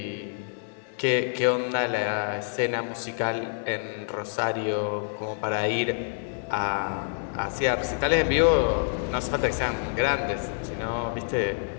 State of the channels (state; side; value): silent; right; 60 dB below the other